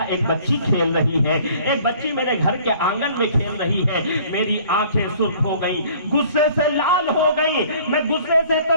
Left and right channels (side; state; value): both; inverted; correlation -0.53